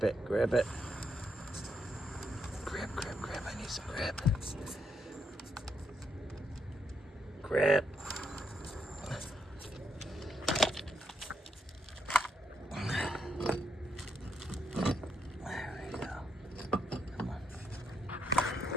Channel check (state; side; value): normal; both; correlation 0.78